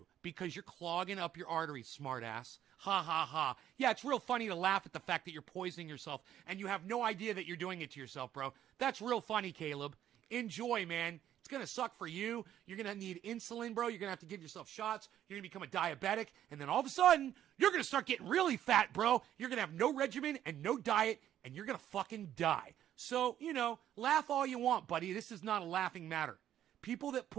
because you're clogging up your arteries, smartass. Ha, ha, ha. Yeah, it's real funny to laugh at the fact that you're poisoning yourself, and you have no idea that you're doing it to yourself, bro. That's real funny, Caleb. Enjoy, man. It's going to suck for you. You're going to need insulin, bro. You're going to have to give yourself shots. You're going to become a diabetic, and then all of a sudden, you're going to start getting really fat, bro. You're going to have no regimen and no diet, and you're going to fucking die. So, you know, laugh all you want, buddy. This is not a laughing matter. People that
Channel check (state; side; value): quieter; left; 11.2 dB